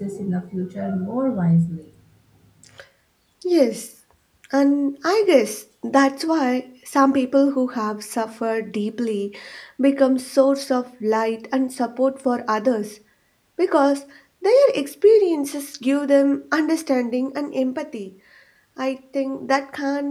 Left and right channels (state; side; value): identical; both; correlation 1.00